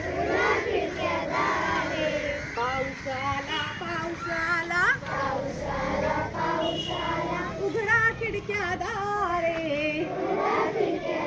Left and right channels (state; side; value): identical; both; correlation 1.00